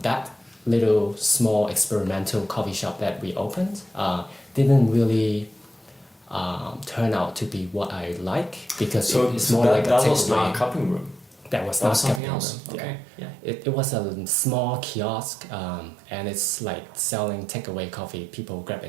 That little small experimental coffee shop that we opened didn't really turn out to be what I like, because it's more like a takeaway. That was not a cupping room. That was not something cupping else. room. Okay. Yeah. It was a small kiosk, and it's like selling takeaway coffee. People grab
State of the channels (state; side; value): drops out; left; at 12.2 s